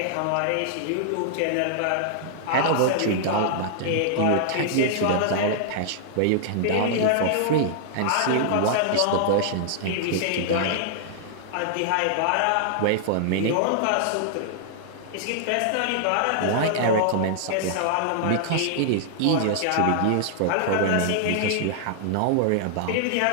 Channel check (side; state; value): both; different; correlation -0.01